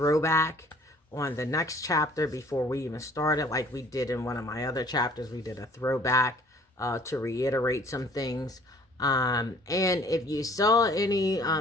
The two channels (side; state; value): both; normal; correlation 0.54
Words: on the next chapter before we even started, like we did in one of my other chapters. We did a throwback to reiterate some things. And if you saw any